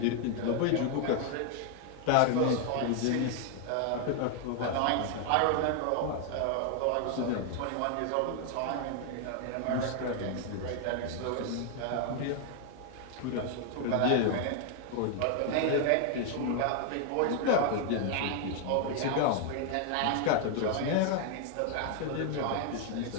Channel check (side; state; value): both; different; correlation 0.00